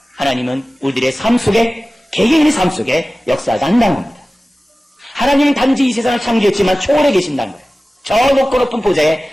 하나님은 우리들의 삶 속에 개개인의 삶 속에 역사하지 않는다는 겁니다. 하나님은 단지 이 세상을 창조했지만 초월해 계신다는 거예요. 저 높고 높은 보좌에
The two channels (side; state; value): both; normal; correlation 0.97